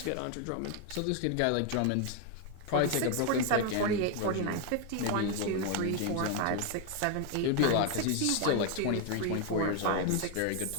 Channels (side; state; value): both; different; correlation 0.01